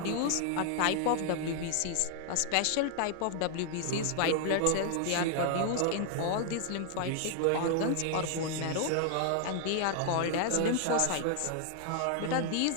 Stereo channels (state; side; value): different; both; correlation 0.00